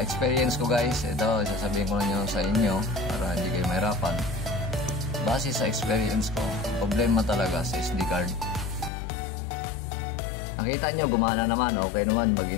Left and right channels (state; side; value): drops out; right; at 8.9 s